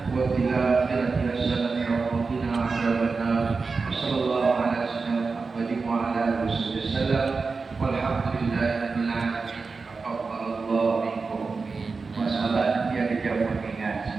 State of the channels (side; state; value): left; quieter; 4.4 dB